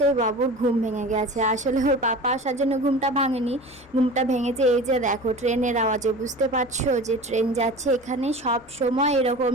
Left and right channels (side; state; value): both; normal; correlation 0.36